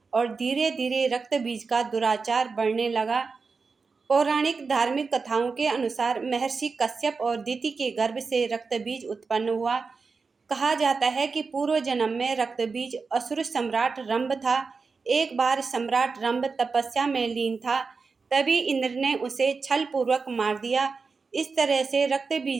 और धीरे धीरे रक्त बीज का दुराचार बढ़ने लगा। पौराणिक धार्मिक कथाओं के अनुसार महर्षि कश्यप और दिति के गर्भ से रक्त बीज उत्पन्न हुआ। कहा जाता है कि पूर्व जन्म में रक्त बीज असुर सम्राट रंभ था। एक बार सम्राट रंभ तपस्या में लीन था, तभी इंद्र ने उसे छल पूर्वक मार दिया। इस तरह से रक्त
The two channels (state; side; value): quieter; left; 4.7 dB